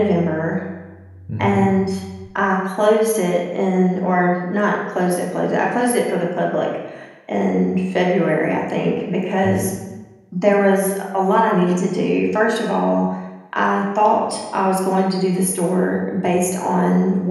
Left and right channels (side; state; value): both; identical; correlation 1.00